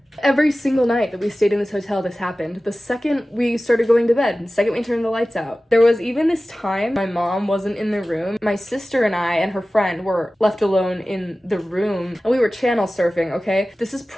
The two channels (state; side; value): normal; both; correlation 0.96